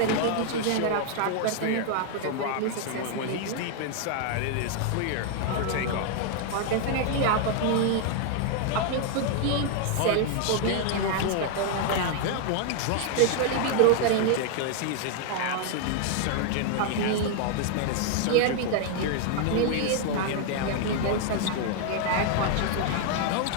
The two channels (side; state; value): both; different; correlation 0.00